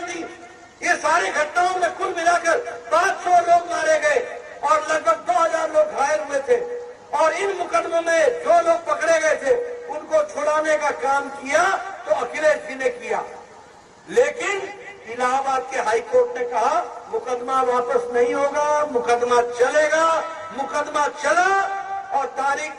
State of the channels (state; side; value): identical; both; correlation 1.00